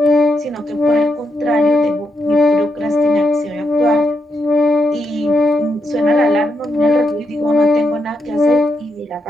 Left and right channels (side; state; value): both; normal; correlation 0.82